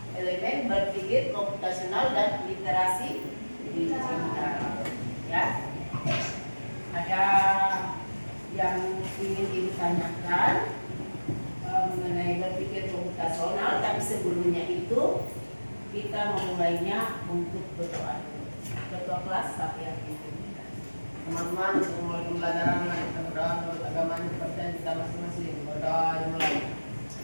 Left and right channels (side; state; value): both; inverted; correlation -1.00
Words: elemen berpikir komputasional dan literasi digital, ya. Ada yang ingin ditanyakan mengenai berpikir komputasional, tapi sebelumnya itu kita memulainya untuk berdoa dulu. Ketua kelas siapa yang pimpin? Teman-teman, untuk mulai pembelajaran kita berdoa menurut agama kepercayaan kita masing-masing. Berdoa dimulai.